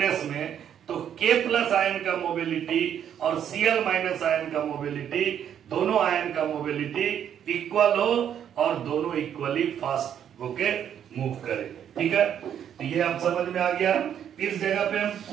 में, तो K प्लस आयन का मोबिलिटी और Cl माइनस आयन का मोबिलिटी, दोनों आयन का मोबिलिटी इक्वल हो और दोनों इक्वली फास्ट होके मूव करे। ठीक है, तो ये आप समझ में आ गया। इस जगह पे हम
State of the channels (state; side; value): quieter; left; 9.3 dB